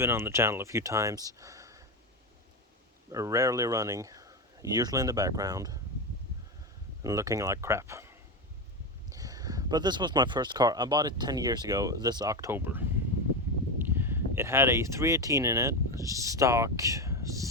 on the channel a few times, rarely running, usually in the background, and looking like crap. But this was my first car. I bought it 10 years ago this October. It had a 318 in it, stock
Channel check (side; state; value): both; normal; correlation 0.15